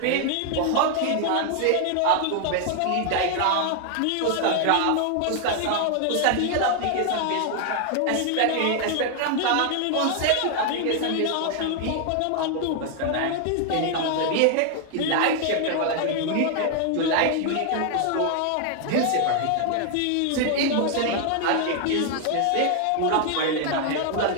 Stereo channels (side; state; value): both; different; correlation 0.00